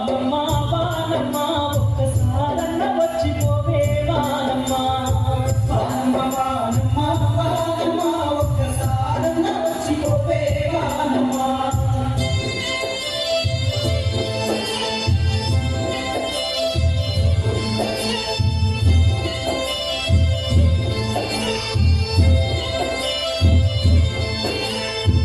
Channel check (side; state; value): both; identical; correlation 1.00